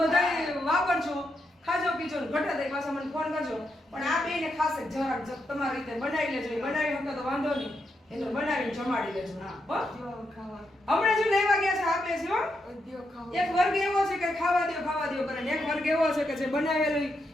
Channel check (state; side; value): normal; both; correlation 0.82